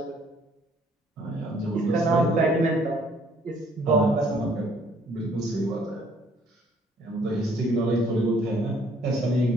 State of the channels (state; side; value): normal; both; correlation 0.62